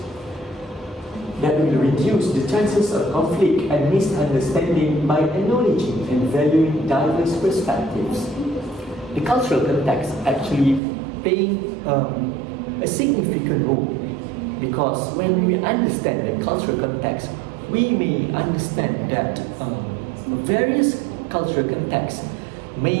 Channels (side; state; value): left; drops out; at 10.8 s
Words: that will reduce the chances of conflict and misunderstanding by acknowledging and valuing diverse perspectives. The cultural context actually playing a significant role because when we understand the cultural context, we may understand that various cultural contexts